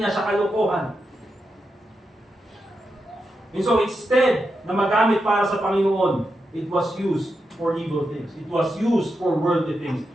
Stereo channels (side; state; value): both; normal; correlation 0.87